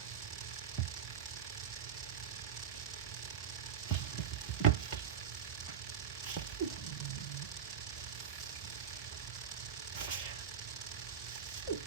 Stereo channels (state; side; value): quieter; left; 7.8 dB